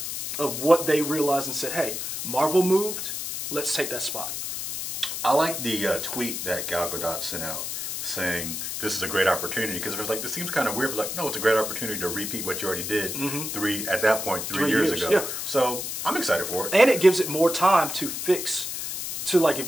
of what they realized and said, hey, Marvel moved, let's take that spot. I like the tweet that Gal Gadot sent out saying this is a great opportunity because it was like, this seems kind of weird, but like, no, it's a great opportunity to repeat what you already did 3 years ago. Yeah. So I'm excited for it. And it gives it more time to fix. To like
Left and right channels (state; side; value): noise; left; hiss, 5 dB below the sound